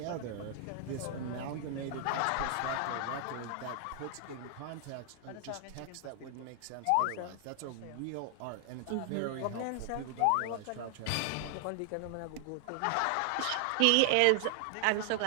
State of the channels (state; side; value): different; both; correlation 0.00